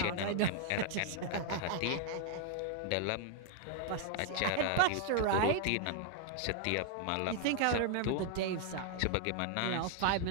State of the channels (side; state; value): both; different; correlation 0.00